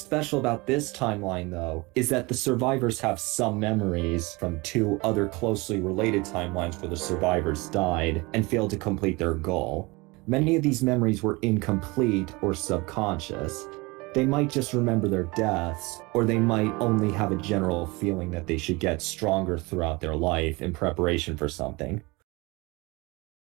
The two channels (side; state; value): left; quieter; 24.7 dB